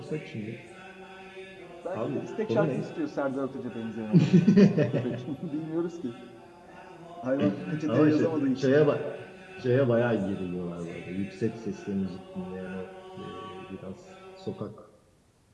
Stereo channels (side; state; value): both; identical; correlation 1.00